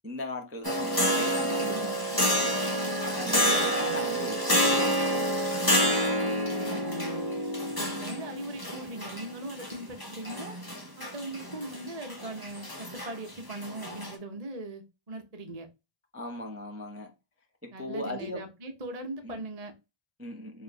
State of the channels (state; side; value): late; left; 1.0 ms